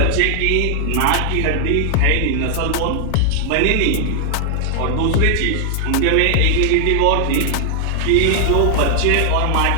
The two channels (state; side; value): different; both; correlation 0.00